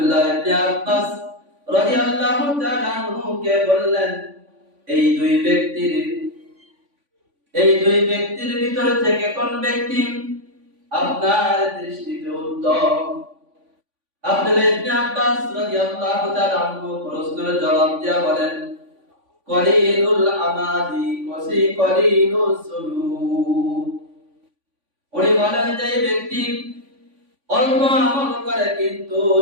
ইবনে আব্বাস রাদিয়াল্লাহু তাআলা আনহু কে বললেন, এই দুই ব্যক্তির ভিতর থেকে কোন ব্যক্তি আপনার দৃষ্টিতে উত্তম? আব্দুল্লাহ ইবনে আব্বাস রাদিয়াল্লাহু তাআলা আনহু প্রশ্নের জবাব দিয়া বলেন, কলিলুল আমালি কলিলুজ যুনুব। উনি বলেন, যে ব্যক্তি অল্প আমল করে কিন্তু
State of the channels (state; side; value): late; left; 3.5 ms